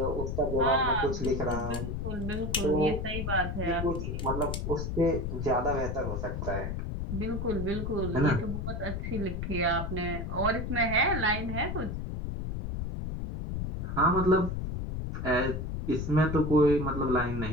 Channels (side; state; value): left; noise; rumble, 3 dB below the sound